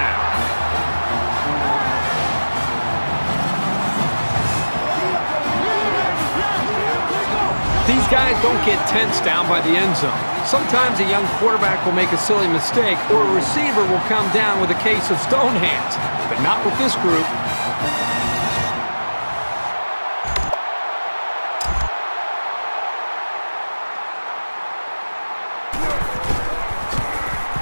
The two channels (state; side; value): inverted; both; correlation -1.00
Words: These guys don't get tense down by the end zone. Sometimes a young quarterback will make a silly mistake, or a receiver will come down with a case of stone hands, but not with this group.